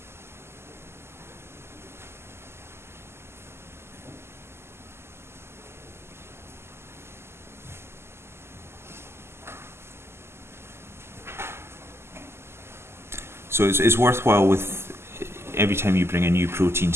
So it's worthwhile with every time you bring a new protein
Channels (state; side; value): late; left; 0.12 ms